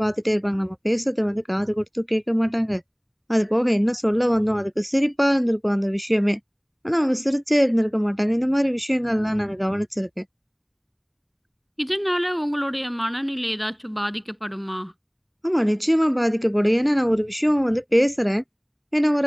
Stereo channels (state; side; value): identical; both; correlation 1.00